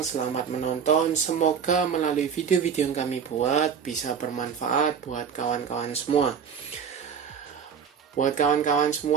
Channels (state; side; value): quieter; left; 7.1 dB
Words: selamat menonton. Semoga melalui video-video yang kami buat bisa bermanfaat buat kawan-kawan semua. Buat kawan-kawan